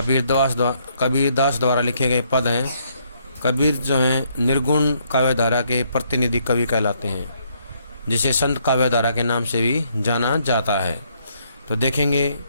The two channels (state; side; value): inverted; both; correlation -0.71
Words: द्वारा लिखे गए पद हैं। कबीर जो हैं निर्गुण काव्यधारा के प्रतिनिधि कवि कहलाते हैं, जिसे संत काव्यधारा के नाम से भी जाना जाता है। तो देखेंगे